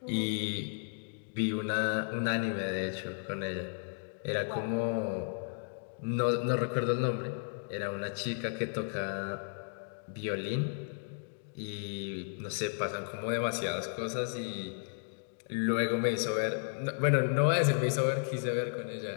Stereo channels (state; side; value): silent; right; digital silence